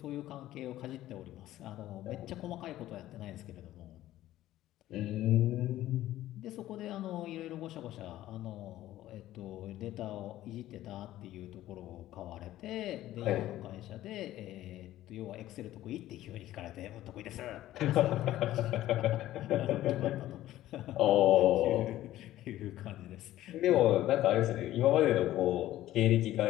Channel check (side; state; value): right; quieter; 14.4 dB